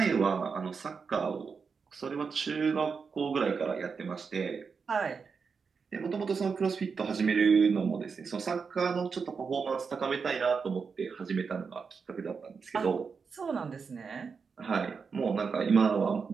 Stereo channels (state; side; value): quieter; left; 5.5 dB